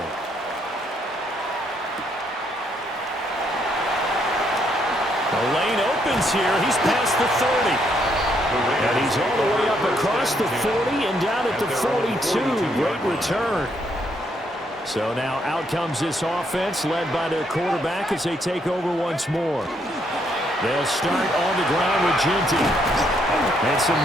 The lane opens here. He's past the 30. And he's all the way up across the 40 and down at the 42. Great return. So now out comes this offense led by their quarterback as they take over once more. They'll start on the ground with Ginty. And some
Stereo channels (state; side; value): normal; both; correlation 0.73